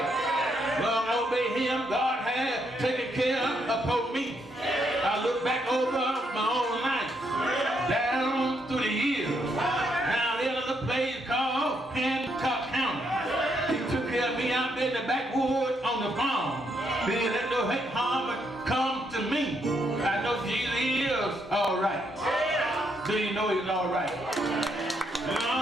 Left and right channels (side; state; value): both; normal; correlation 0.76